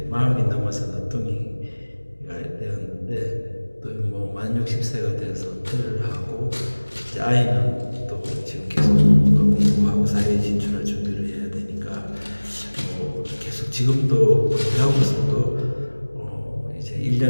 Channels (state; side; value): inverted; both; correlation -1.00